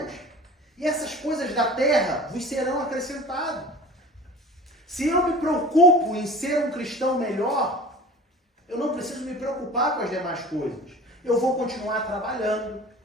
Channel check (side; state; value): both; normal; correlation 0.40